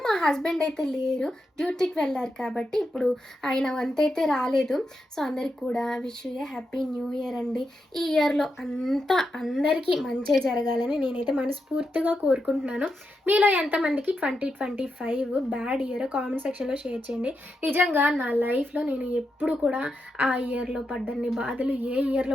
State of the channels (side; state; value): both; normal; correlation 0.85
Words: మా హస్బెండ్ అయితే లేరు, డ్యూటీకి వెళ్ళారు కాబట్టి ఇప్పుడు ఆయన వంత అయితే రాలేదు. సో అందరికి కూడా wish you A happy new year అండి. ఈ ఇయర్లో అంతా అందరికీ మంచి జరగాలని నేనైతే మనస్ఫూర్తిగా కోరుకుంటున్నాను. మీలో ఎంతమందికి 2025 బ్యాడ్ ఇయర్ కామెంట్ సెక్షన్లో షేర్ చేయండి. నిజంగా నా లైఫ్లో నేను ఎప్పుడు కూడా ఆ ఇయర్లో పడ్డన్ని బాధలు ఏ